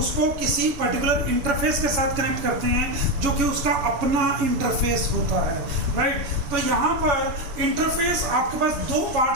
किसी पर्टिकुलर इंटरफेस के साथ कनेक्ट करते हैं जो कि उसका अपना इंटरफेस होता है, राइट। तो यहाँ पर इंटरफेस आपके पास दो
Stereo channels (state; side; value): late; left; 6.9 ms